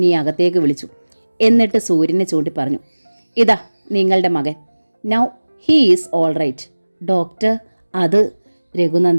അകത്തേക്ക് വിളിച്ചു. എന്നിട്ട് സൂര്യനെ ചൂണ്ടി പറഞ്ഞു, ഇതാ നിങ്ങളുടെ മകൻ. Now he is all right. Doctor, അത്?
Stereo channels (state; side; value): inverted; both; correlation -1.00